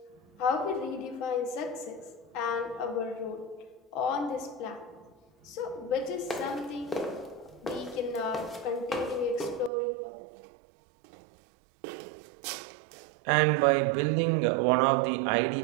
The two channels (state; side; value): drops out; left; at 9.7 s